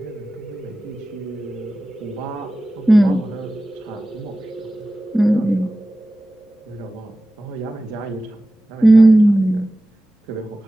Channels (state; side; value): normal; both; correlation 0.96